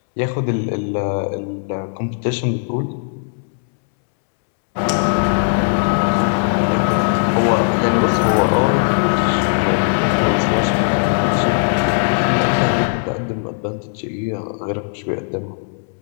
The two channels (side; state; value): right; silent; 67 dB below the other